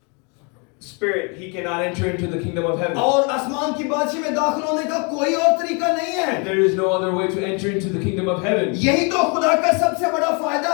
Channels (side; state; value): right; quieter; 34.1 dB